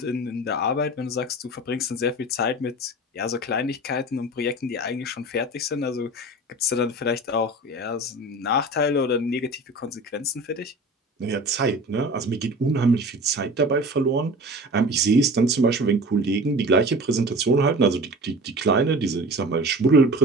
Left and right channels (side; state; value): both; normal; correlation 0.37